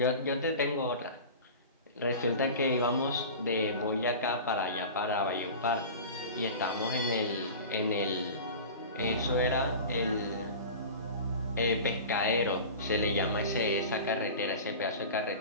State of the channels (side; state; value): both; inverted; correlation -0.34